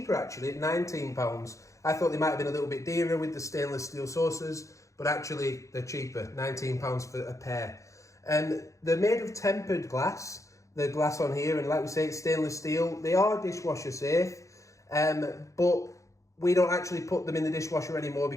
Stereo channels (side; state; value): right; late; 0.15 ms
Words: actually at £19. I thought they might have been a little bit dearer with the stainless steel saucers, but actually they're cheaper, £19 for a pair. They're made of tempered glass, the glass on here, and like we say, it's stainless steel. They are dishwasher safe, but we don't actually put them in the dishwasher anymore